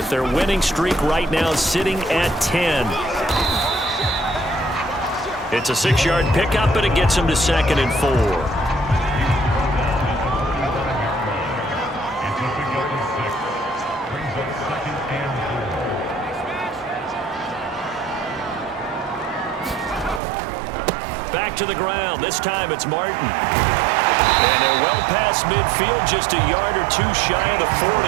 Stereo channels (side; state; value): left; drops out; at 20.2 s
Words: their winning streak right now sitting at 10. It's a 6-yard pickup, and it gets them to 2nd and 4. Back to the ground. This time it's Martin. And they're well past midfield, just a yard or two shy of the 40.